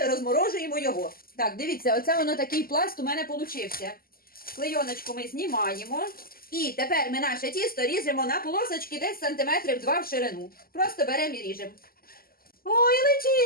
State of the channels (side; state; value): right; late; 0.42 ms